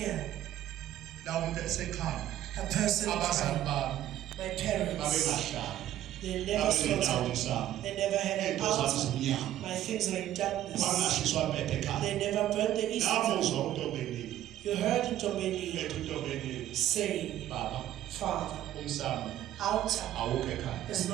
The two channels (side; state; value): left; quieter; 12.7 dB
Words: la umuntu esekhaya. A person, Abazali bami my parents, babengahlala. they never Babenendawo slaughtered. zabo. They never had an Into zabo altar. zimnyama. My things are in darkness. Bangashiswa mpethe ekhaya. They never burned the incense. Namuzwa uNtombeni. You heard Ntombeni Ethi uNtombeni saying, baba Father, umsamo altar awukho ekhaya. is